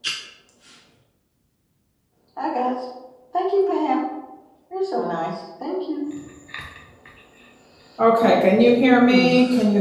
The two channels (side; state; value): both; identical; correlation 1.00